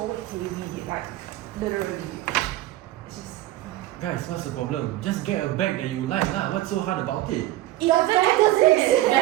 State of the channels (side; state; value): left; quieter; 15.7 dB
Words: heavy, like literally. It's just. Guys, what's the problem? Just get a bag that you like lah. What's so hard about it? The bag doesn't exist!